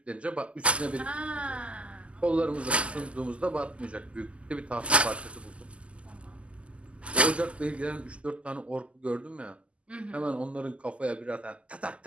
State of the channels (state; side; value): late; left; 0.058 ms